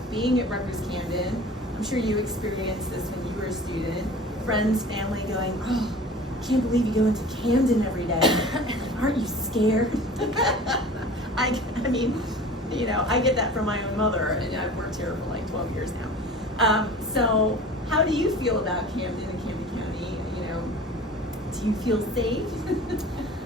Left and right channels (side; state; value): both; normal; correlation 0.41